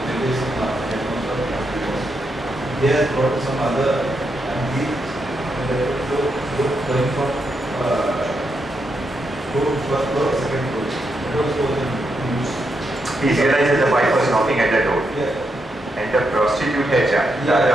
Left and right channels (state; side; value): normal; both; correlation 0.82